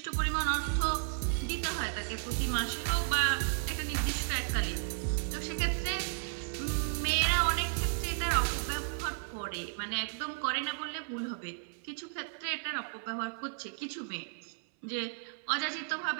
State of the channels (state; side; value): silent; left; 55 dB below the other